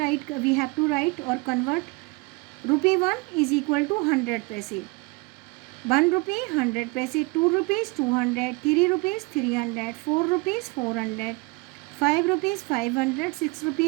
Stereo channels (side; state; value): left; quieter; 26.2 dB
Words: we have to write और convert. Rupee 1 is equal to 100 paise. 1 rupee 100 paise. 2 rupees 200. 3 rupees 300. 4 rupees 400. 5 rupees 500. 6